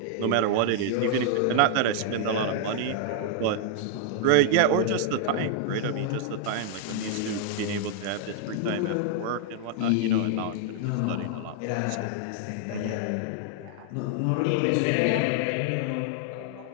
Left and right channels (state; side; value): different; both; correlation -0.01